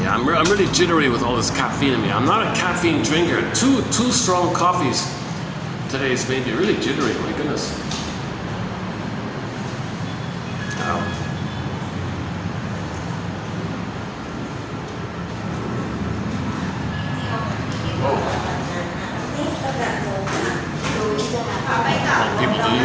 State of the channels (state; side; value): identical; both; correlation 1.00